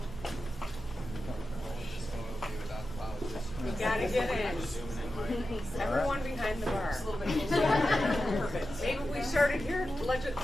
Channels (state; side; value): normal; both; correlation 0.91